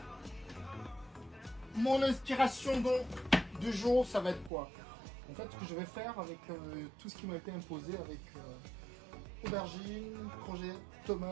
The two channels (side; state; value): left; drops out; at 4.5 s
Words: Mon inspiration donc du jour, ça va être quoi? En fait, ce que je vais faire avec tout ce qui m'a été imposé, avec aubergine, courgette,